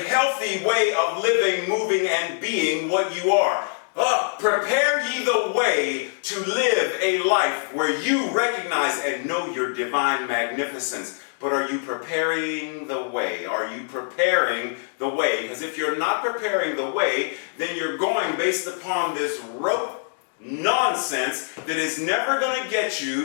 healthy way of living, moving, and being what you are. Prepare ye the way to live a life where you recognize and know your divine magnificence. But are you preparing the way? Are you preparing the way? Because if you're not preparing the way, then you're going based upon this rote nonsense that is never going to get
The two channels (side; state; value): right; silent; digital silence